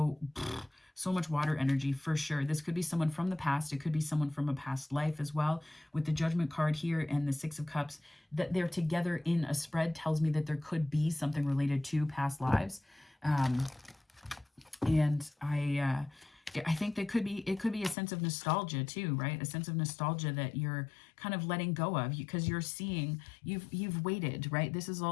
much water energy for sure. This could be someone from the past. It could be someone from a past life as well. With the Judgment card here and the 6 of Cups, that they're together in a spread tells me that there could be something related to past lives. And I think it could be a sense of nostalgia too, right? A sense of nostalgia that you're kind of letting go of because you're seeing you've waited, right? This is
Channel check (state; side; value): drops out; right; at 17.9 s